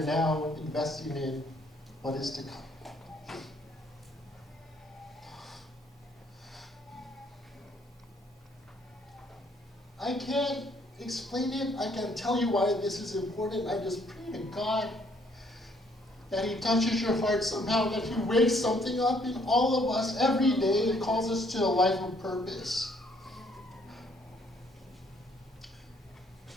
investing in what is to come? I can't explain it. I can't tell you why this is important. I just pray to God that he touches your heart somehow, that he wakes something up in all of us every day and calls us to a life of purpose.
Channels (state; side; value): normal; both; correlation 0.66